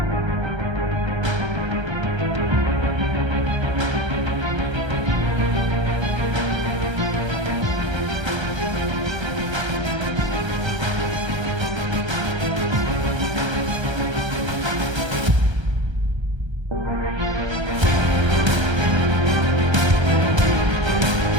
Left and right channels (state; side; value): late; left; 1.3 ms